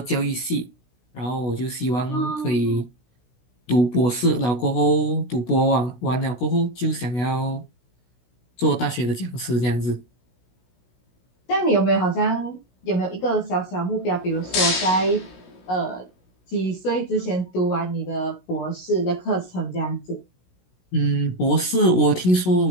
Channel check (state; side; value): late; right; 16 ms